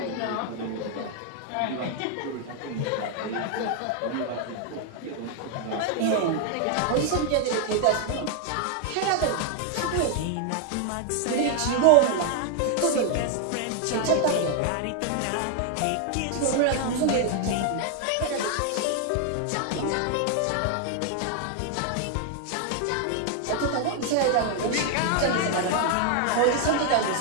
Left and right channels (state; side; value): different; both; correlation 0.00